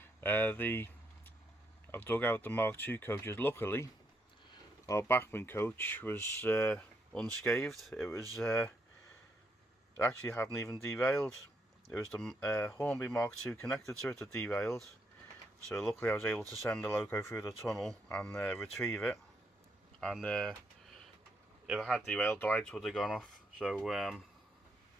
I've dug out the Mark II coaches. Luckily, our Bachmann coach was unscathed. It actually hadn't even derailed. It was the Hornby Mark II connected to it that derailed. So luckily I was able to send the loco through the tunnel and retrieve it. And if it had derailed, the lights would have gone off. So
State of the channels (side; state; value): both; normal; correlation 0.77